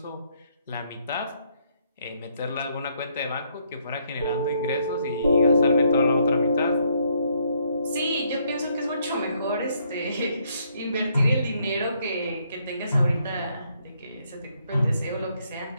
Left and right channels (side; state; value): both; inverted; correlation -0.71